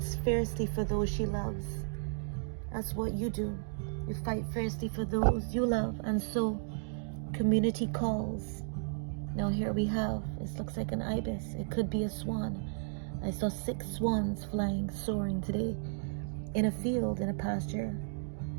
fiercely for those she loves. That's what you do. You fight fiercely for those you love, and so community calls. Now here we have, it looks like an ibis. It could be a swan. I saw 6 swans flying, soaring today in a field, in a pasture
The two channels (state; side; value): silent; left; digital silence